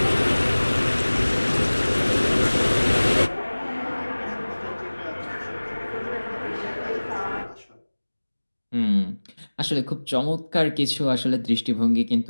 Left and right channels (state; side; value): inverted; both; correlation -1.00